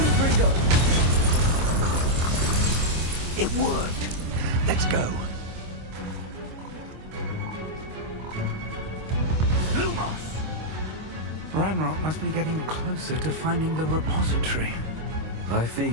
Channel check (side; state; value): left; late; 25 ms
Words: It worked. Let's go. Lumos! Ranrock must be getting closer to finding the repository. I fear